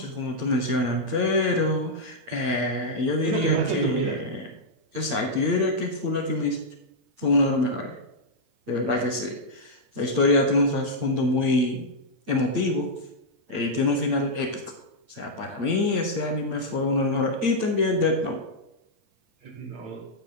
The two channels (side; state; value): left; late; 8.7 ms